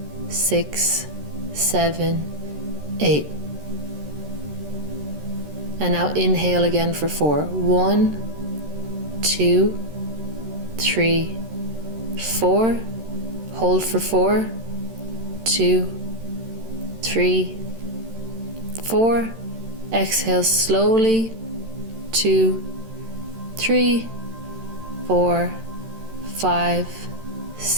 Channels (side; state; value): left; late; 13 ms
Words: 6, 7, 8. And now inhale again for 4. 1, 2, 3, 4. Hold for 4, 2, 3, 4. Exhale slowly. 2, 3, 4, 5,